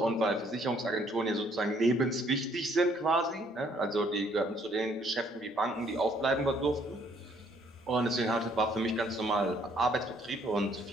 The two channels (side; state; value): both; normal; correlation 0.64